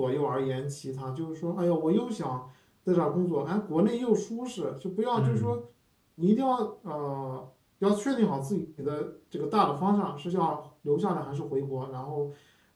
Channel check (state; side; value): identical; both; correlation 1.00